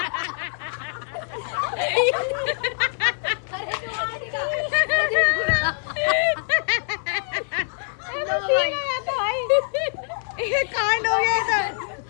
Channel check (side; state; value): right; silent; digital silence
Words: कांड हो गया इधर।